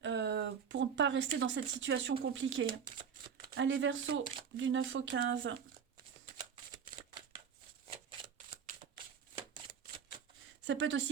pour ne pas rester dans cette situation compliquée. Allez, Verseau, du 9 au 15. Ça peut être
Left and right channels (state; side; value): quieter; left; 7.2 dB